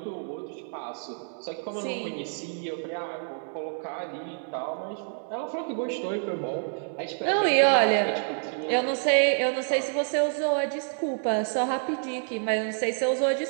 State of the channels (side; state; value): left; silent; 59 dB below the other